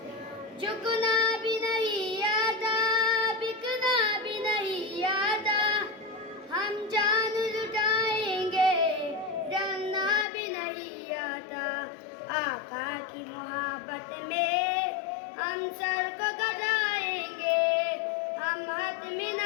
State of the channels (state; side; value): drops out; right; at 10.2 s